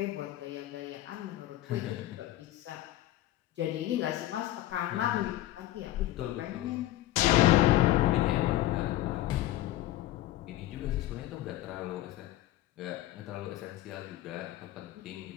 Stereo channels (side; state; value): right; quieter; 15.2 dB